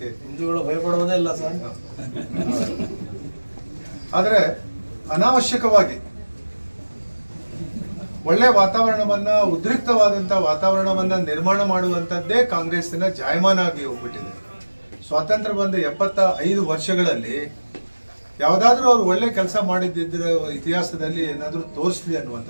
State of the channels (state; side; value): inverted; both; correlation -1.00